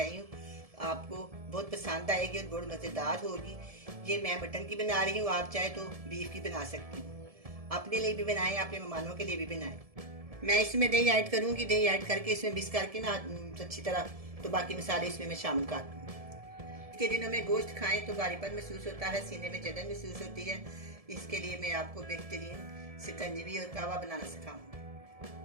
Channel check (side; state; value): left; late; 1.7 ms